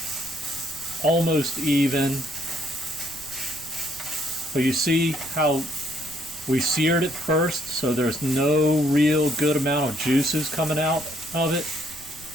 almost even. But you see how we seared it first, so there's no real good amount of juices coming out of it.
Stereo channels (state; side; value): noise; right; rumble, 20 dB below the sound